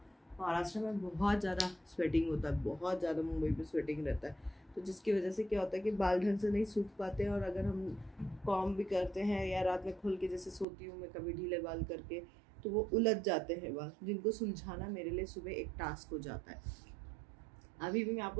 महाराष्ट्र में बहुत ज़्यादा स्वेटिंग होता है, बहुत ज़्यादा मुंबई में स्वेटिंग रहता है, तो जिसकी वजह से क्या होता है कि बाल ढंग से नहीं सूख पाते हैं। और अगर हम कॉम भी करते हैं या रात में खुल के जैसे सोती हूँ मैं कभी ढीले बाल करके, तो वो उलझ जाते हैं बाल, जिनको सुलझाना मेरे लिए सुबह एक टास्क हो जाता है। अभी भी मैं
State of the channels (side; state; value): left; drops out; at 10.7 s